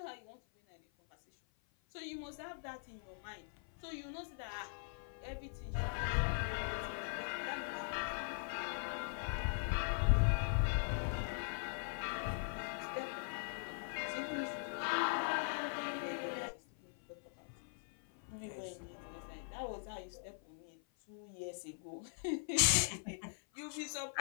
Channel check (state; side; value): silent; right; 50 dB below the other